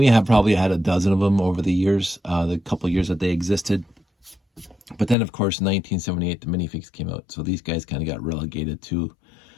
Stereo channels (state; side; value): drops out; right; at 5.2 s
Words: have probably had a dozen of them over the years, the couple of years that they existed. But then, of course, in 1978, the minifigs came out. So these guys kind of got relegated to